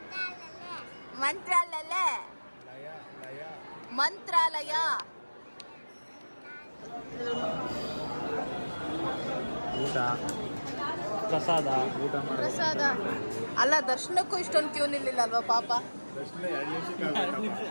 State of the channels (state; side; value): inverted; both; correlation -1.00